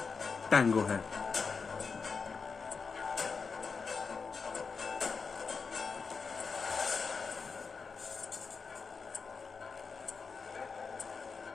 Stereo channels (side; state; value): right; quieter; 5.1 dB